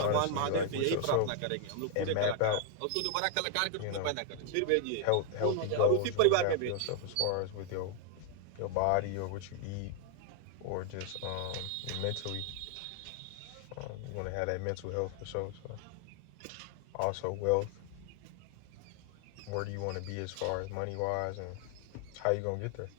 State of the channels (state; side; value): different; both; correlation 0.00